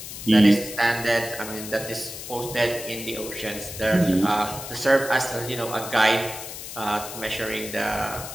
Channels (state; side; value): noise; left; hiss, 10 dB below the sound